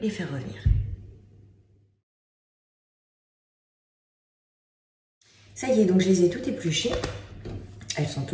les faire revenir. Ça y est, donc je les ai toutes épluchées. Elles sont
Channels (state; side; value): identical; both; correlation 1.00